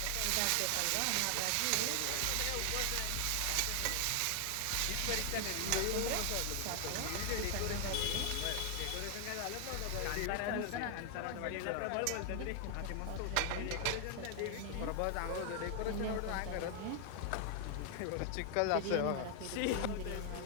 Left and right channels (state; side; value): different; both; correlation 0.00